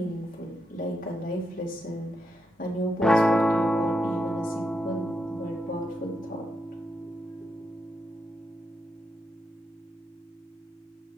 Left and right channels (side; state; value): both; normal; correlation 0.83